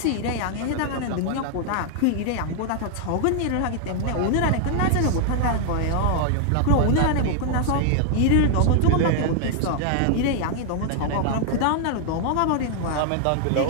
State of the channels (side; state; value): both; different; correlation 0.00